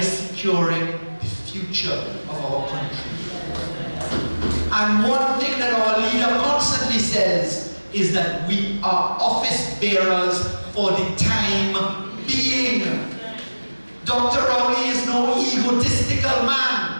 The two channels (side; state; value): both; inverted; correlation -1.00